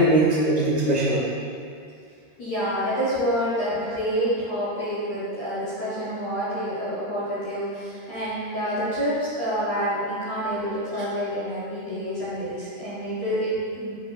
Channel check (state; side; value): late; right; 13 ms